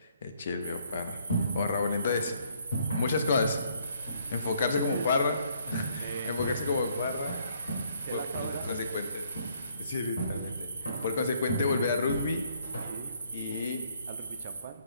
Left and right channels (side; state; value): both; inverted; correlation -0.66